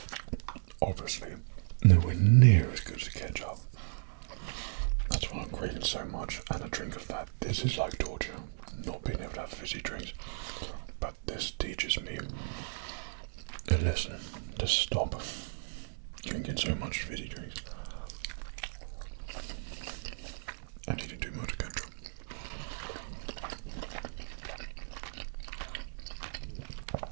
Obviously, nowhere near as good as ketchup. That's why I'm craving so much, and a drink of that. This is like torture, not being able to have fizzy drinks. But this teaches me a lesson to stop drinking so much fizzy drinks. And eating too much ketchup.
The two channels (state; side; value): silent; left; digital silence